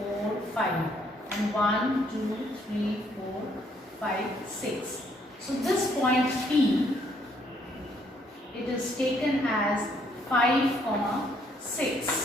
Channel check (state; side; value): normal; both; correlation 0.68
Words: 5 and 1, 2, 3, 4, 5, 6. So this point P, it is taken as 5,